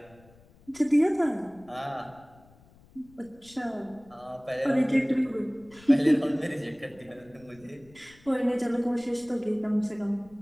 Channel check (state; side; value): noise; left; rumble, 27 dB below the sound